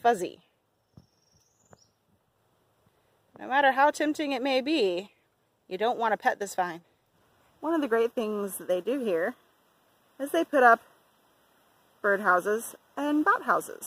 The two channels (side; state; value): both; identical; correlation 1.00